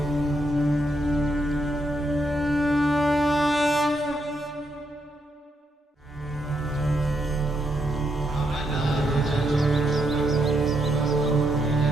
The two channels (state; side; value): normal; both; correlation 0.79